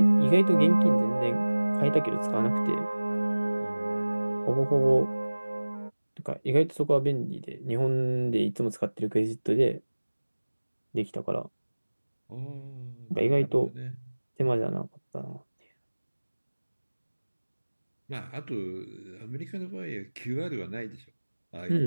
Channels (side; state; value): both; inverted; correlation -1.00